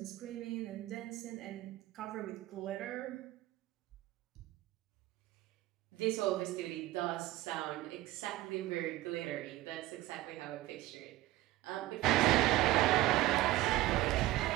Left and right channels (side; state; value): left; quieter; 17.0 dB